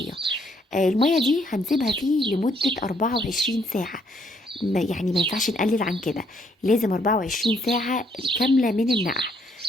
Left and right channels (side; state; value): both; normal; correlation 0.70